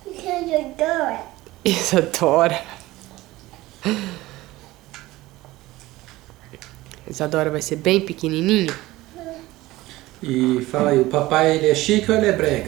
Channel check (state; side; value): quieter; left; 18.2 dB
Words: Isadora. Isadora vai ser bem pequenininho? E fala aí, o papai ele é chique ou ele é